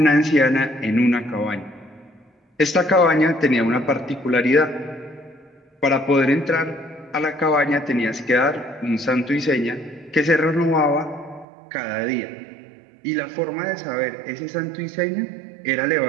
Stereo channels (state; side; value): drops out; left; at 11.5 s